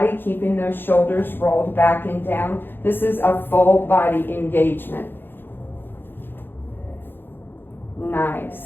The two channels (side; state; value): right; late; 0.10 ms